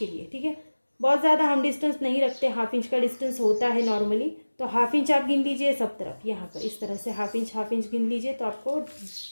लिए। ठीक है, बहुत ज़्यादा हम डिस्टेंस नहीं रखते, हाफ इंच का डिस्टेंस होता है नॉर्मली, तो हाफ इंच आप गिन लीजिए सब तरफ। यहाँ पर इस तरह से हाफ इंच गिन लीजिए तो आपको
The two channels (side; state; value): both; inverted; correlation -1.00